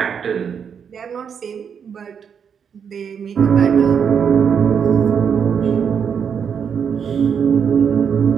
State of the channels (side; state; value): left; quieter; 7.2 dB